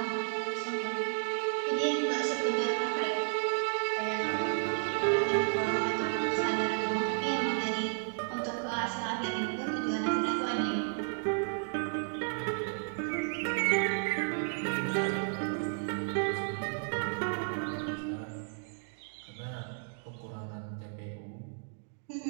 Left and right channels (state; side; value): silent; left; 56 dB below the other